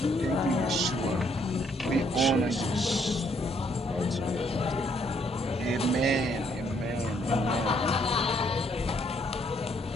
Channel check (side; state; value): both; normal; correlation 0.69